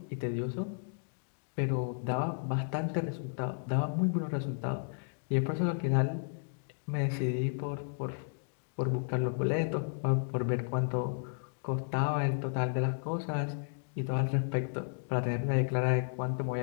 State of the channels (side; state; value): right; silent; digital silence